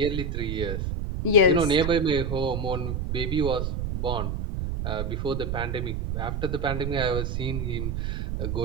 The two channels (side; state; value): right; noise; rumble, 2 dB below the sound